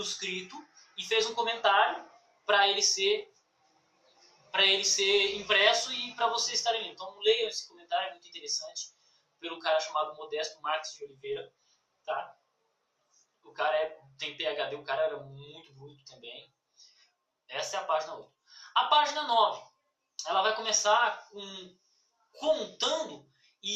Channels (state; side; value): identical; both; correlation 1.00